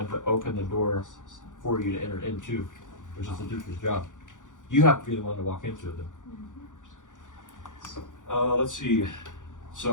to open the door for you to enter into, which is the teacher's job. You have to be the one to walk into it though. Let's see.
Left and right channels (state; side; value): late; right; 0.87 ms